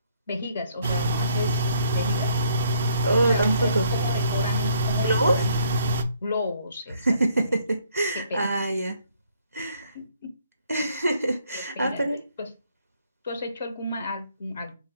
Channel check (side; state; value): both; inverted; correlation -0.66